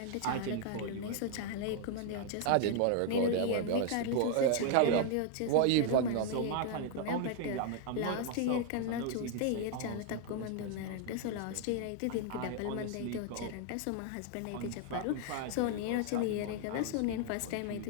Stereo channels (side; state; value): both; different; correlation 0.00